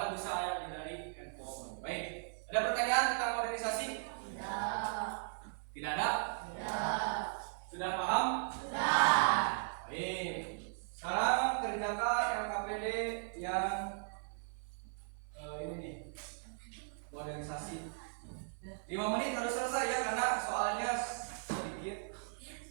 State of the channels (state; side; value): silent; left; 53 dB below the other